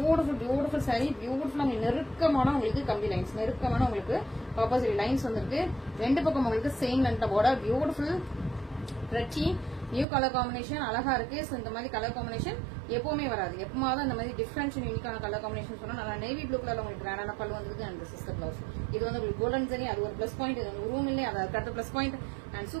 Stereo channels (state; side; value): drops out; left; at 10.1 s